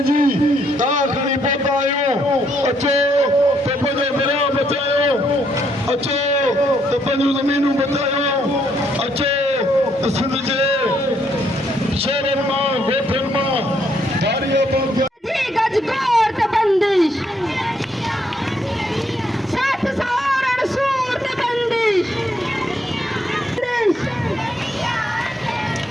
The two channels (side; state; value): both; normal; correlation 0.73